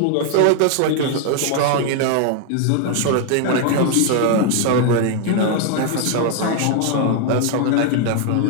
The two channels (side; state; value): both; different; correlation 0.00